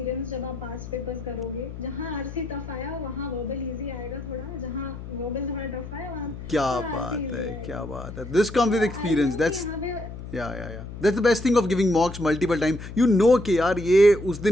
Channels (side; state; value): left; noise; hum, 11 dB below the sound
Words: जब आप पास पेपर्स करोगे, जहाँ RC टफ आया वहाँ वर्बल इजी आएगा थोड़ा, जहाँ वर्बल थोड़ा टफ आया वहाँ क्या बात है. This comes with experience. That's That's the best thing of giving mocks multiple time. You know कि यार ये उस